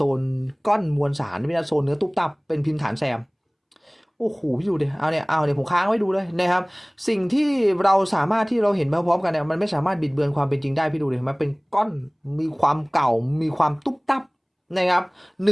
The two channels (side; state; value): both; identical; correlation 1.00